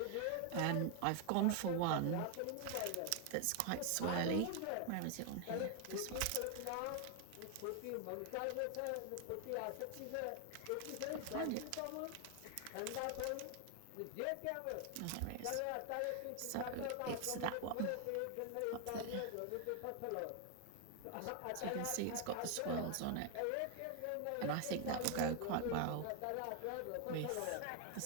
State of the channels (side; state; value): both; different; correlation 0.00